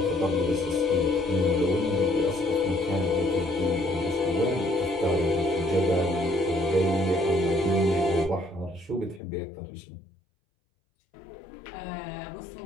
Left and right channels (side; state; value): right; drops out; at 9.2 s